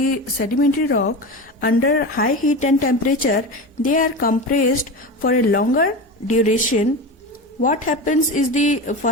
sedimentary rock under high heat and temperature, they are compressed for a longer duration, what happens is the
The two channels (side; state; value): both; normal; correlation 0.25